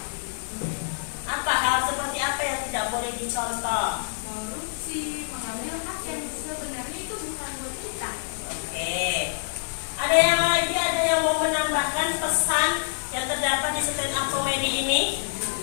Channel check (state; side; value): silent; right; digital silence